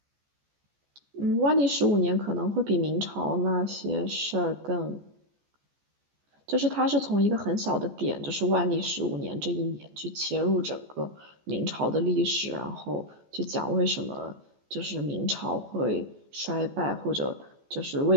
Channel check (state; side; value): late; left; 14 ms